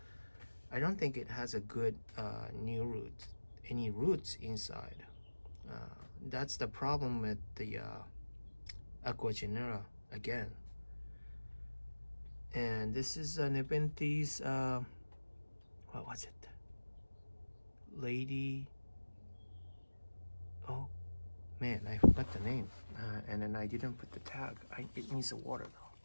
I don't think it has a good new roots, any roots inside. That's the problem with the Aquagenera again. And this is Nepenthes, what was it? Lady, oh man, I forgot the name. And then I didn't put the tag. It needs a water though.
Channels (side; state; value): both; inverted; correlation -1.00